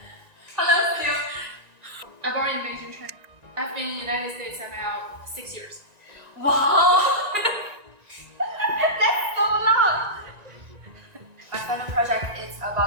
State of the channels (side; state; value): left; late; 1.9 ms